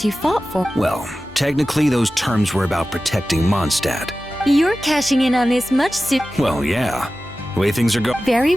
you fought for? Well, technically those terms were about protecting Mondstadt. You're cashing in on this much soon. Well, yeah. The way things are going... Very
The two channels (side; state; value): both; normal; correlation 0.95